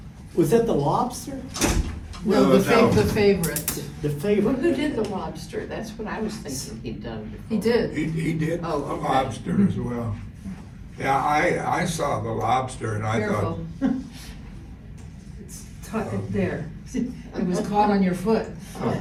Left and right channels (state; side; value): identical; both; correlation 1.00